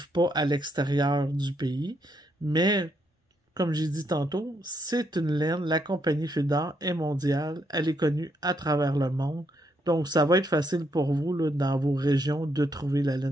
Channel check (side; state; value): both; normal; correlation 0.76